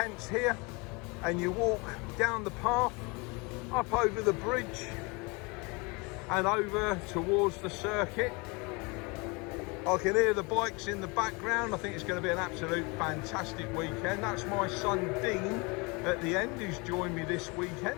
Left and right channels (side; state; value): right; quieter; 28.3 dB